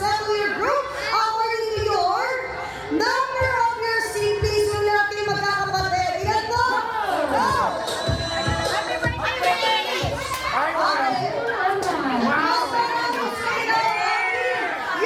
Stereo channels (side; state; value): both; identical; correlation 1.00